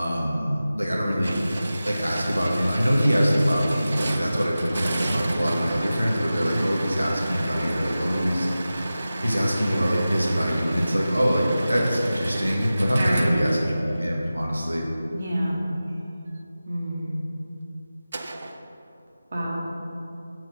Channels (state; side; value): inverted; both; correlation -0.95